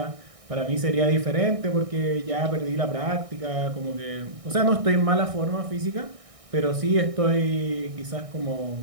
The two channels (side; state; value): left; late; 1.6 ms